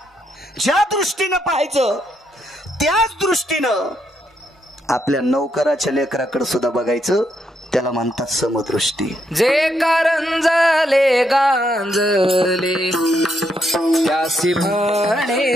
ज्या दृष्टीनं पाहायचं त्याच दृष्टीनं आपल्या नौकराच्या लेकराकडे सुद्धा बघायचं. त्याला म्हणतात समदृष्टी. जे कारंजले गांजले त्यासी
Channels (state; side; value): normal; both; correlation 0.78